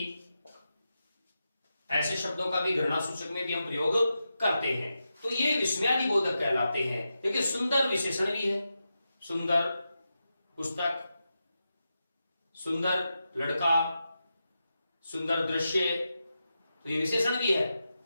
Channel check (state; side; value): inverted; both; correlation -0.89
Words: ऐसे शब्दों का भी घृणा सूचक में भी हम प्रयोग करते हैं। तो ये विस्मयादि बोधक कहलाते हैं। देखिए सुंदर विशेषण भी है, सुंदर पुस्तक, सुंदर लड़का, सुंदर दृश्य, तो ये विशेषण भी है।